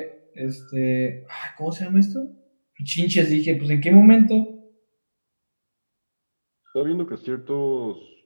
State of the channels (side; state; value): both; inverted; correlation -1.00